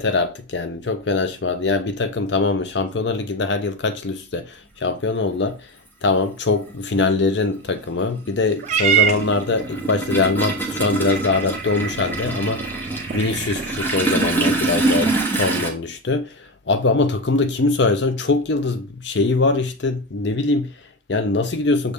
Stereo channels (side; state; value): both; normal; correlation 0.17